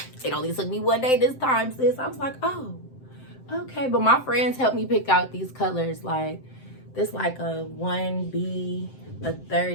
It only took me one day this time, sis. I was like, oh, okay. But my friends helped me pick out these colors. Like, this like a 1B, a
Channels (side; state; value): right; late; 7.7 ms